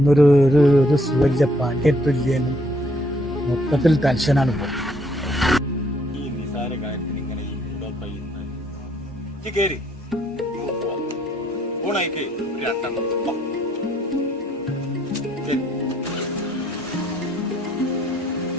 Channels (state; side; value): normal; both; correlation 0.67